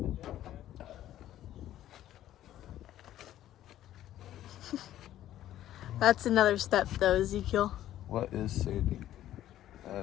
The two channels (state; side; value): quieter; right; 12.8 dB